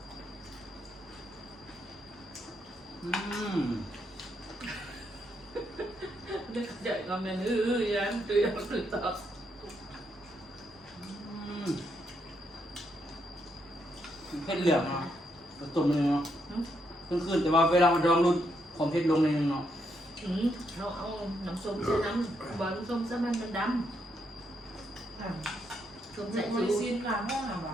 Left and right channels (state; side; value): normal; both; correlation 0.78